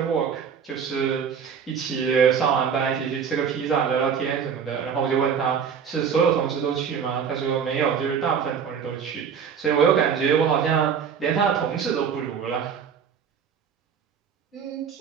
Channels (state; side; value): quieter; left; 7.1 dB